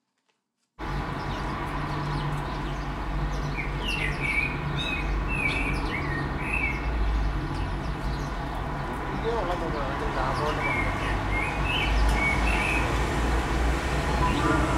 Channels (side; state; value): both; identical; correlation 1.00